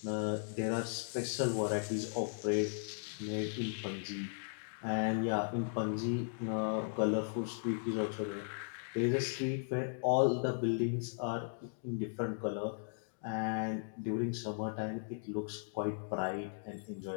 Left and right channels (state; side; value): silent; right; digital silence